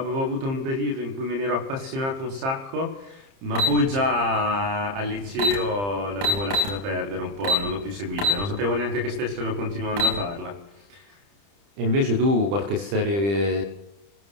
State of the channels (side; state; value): left; late; 30 ms